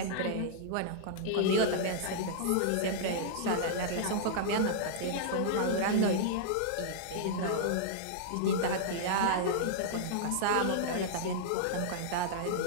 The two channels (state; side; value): different; both; correlation -0.02